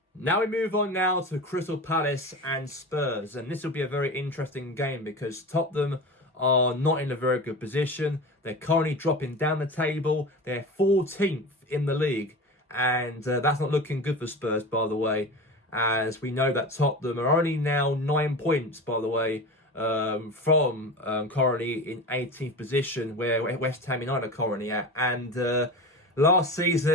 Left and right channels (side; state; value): both; normal; correlation 0.30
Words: Now we move on now to Crystal Palace and Spurs. And this will be a very interesting game because Tottenham are not in a very good position. They're currently dropping down the table. They're 14th in the league. And that's not looking good for Spurs, by the way, as we know that Tottenham are only now 9 points, by the way, from currently in 18th position, where West Ham United are currently at. And last